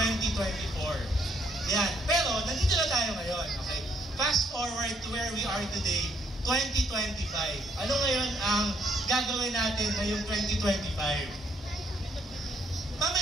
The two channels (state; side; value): normal; both; correlation 0.70